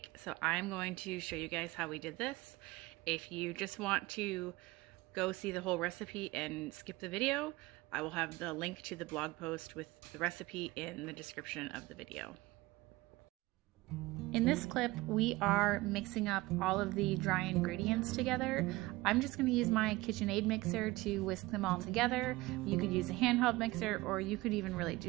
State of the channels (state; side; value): quieter; left; 20.3 dB